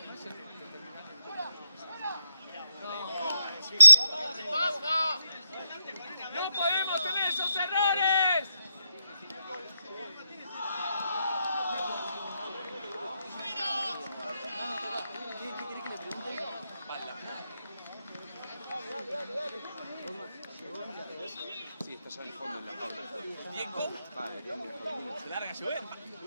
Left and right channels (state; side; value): inverted; both; correlation -0.85